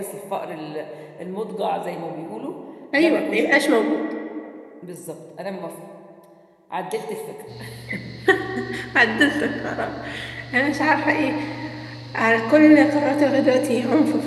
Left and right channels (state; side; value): identical; both; correlation 1.00